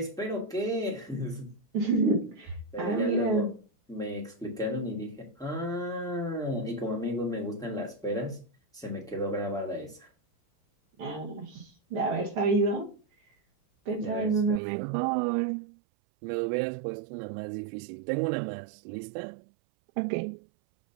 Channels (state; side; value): drops out; left; at 14.6 s